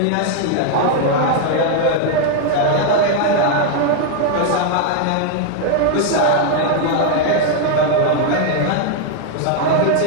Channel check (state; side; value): different; both; correlation 0.00